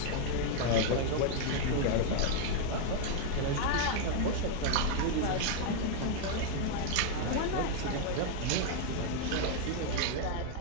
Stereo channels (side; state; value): both; different; correlation 0.00